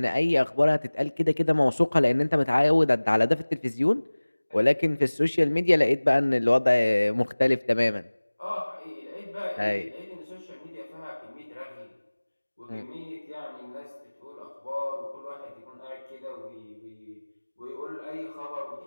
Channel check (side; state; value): both; inverted; correlation -1.00